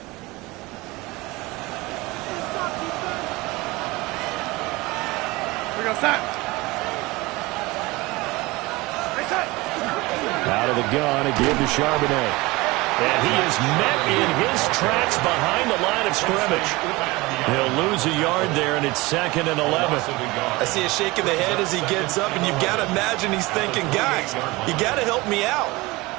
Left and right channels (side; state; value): left; quieter; 22.0 dB